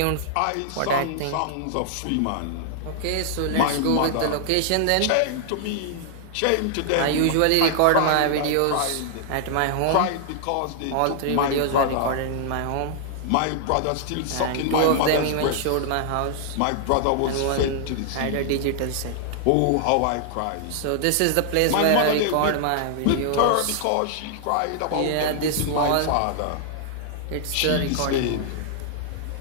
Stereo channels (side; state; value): both; different; correlation -0.01